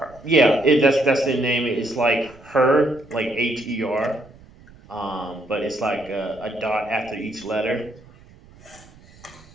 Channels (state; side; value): noise; right; rumble, 24 dB below the sound